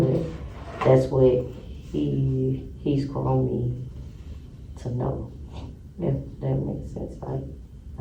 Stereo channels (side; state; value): both; identical; correlation 1.00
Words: that's what he's grown me to know. If that makes sense, like